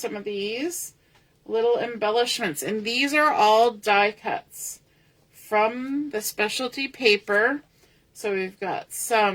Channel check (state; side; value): identical; both; correlation 1.00